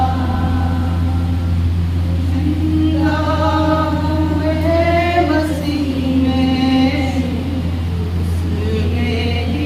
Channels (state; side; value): identical; both; correlation 1.00